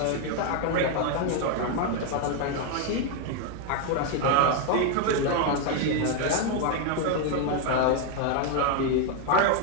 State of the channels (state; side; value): different; both; correlation 0.01